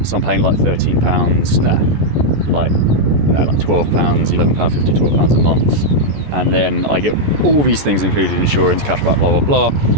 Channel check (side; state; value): left; late; 14 ms